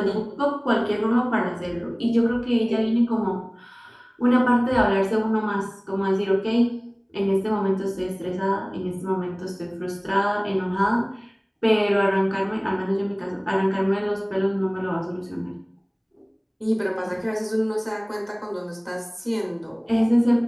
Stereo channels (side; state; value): both; identical; correlation 1.00